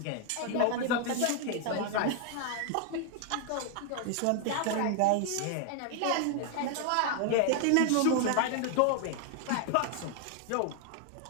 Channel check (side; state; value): both; different; correlation 0.00